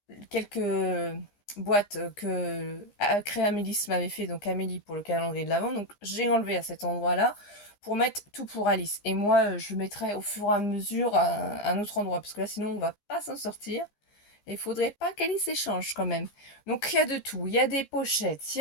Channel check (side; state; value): right; late; 15 ms